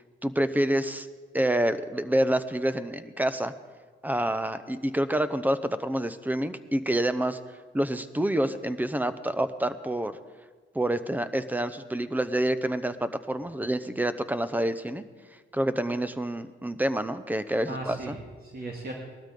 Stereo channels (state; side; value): normal; both; correlation 0.88